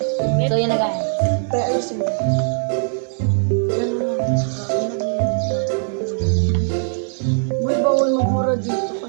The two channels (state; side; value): silent; left; digital silence